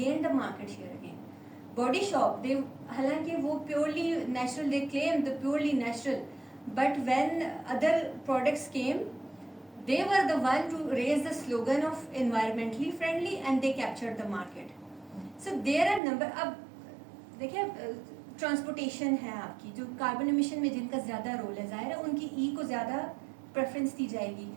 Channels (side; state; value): left; drops out; at 16.0 s